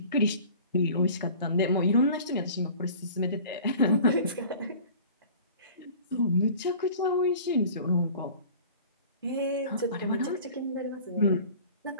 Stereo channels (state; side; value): inverted; both; correlation -0.44